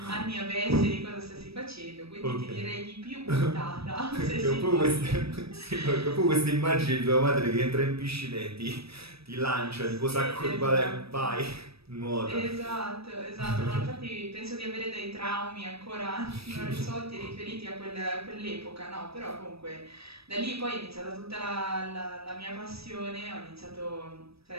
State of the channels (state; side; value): late; left; 0.78 ms